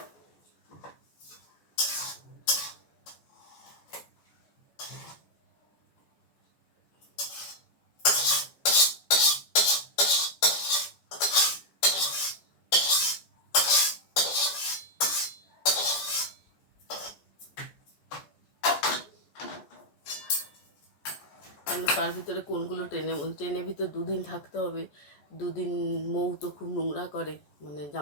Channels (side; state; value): right; late; 14 ms